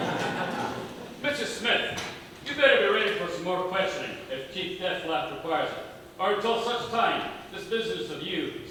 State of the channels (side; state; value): both; identical; correlation 1.00